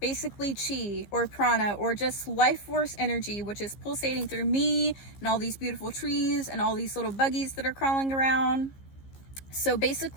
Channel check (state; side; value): late; right; 15 ms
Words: chi or prana or just life force energy, which is pulsating through me and all these beautiful trees and all these little buggies that are crawling around. So